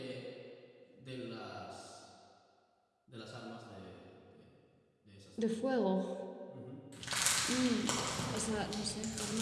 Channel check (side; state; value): both; identical; correlation 1.00